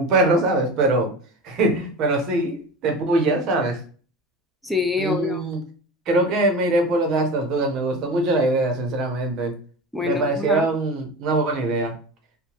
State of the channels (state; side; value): normal; both; correlation 0.31